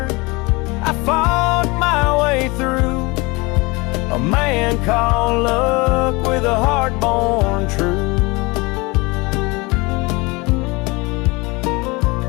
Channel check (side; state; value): right; quieter; 25.2 dB